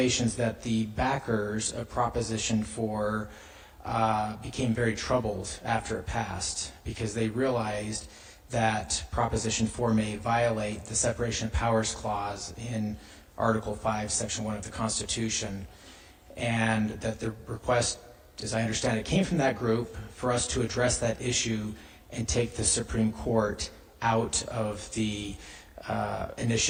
that the backers of Proposition 4 became very troubled after it passed because they realized that Proposition 4 may violate the Separation of Powers Clause in Article 5, Section 1 of the Constitution, and that the request, as I understand it, came from that group for us to address that issue and take the Supreme Court out of the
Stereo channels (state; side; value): identical; both; correlation 1.00